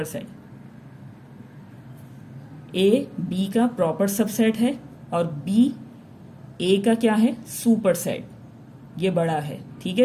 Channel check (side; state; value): both; identical; correlation 1.00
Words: सेट। ए बी का प्रॉपर सबसेट है और बी ए का क्या है, सुपर सेट, ये बड़ा है। ठीक है,